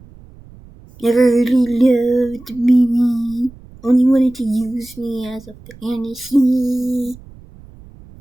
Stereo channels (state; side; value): noise; right; rumble, 22 dB below the sound